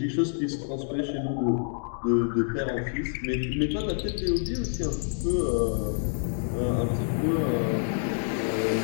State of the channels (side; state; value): right; silent; digital silence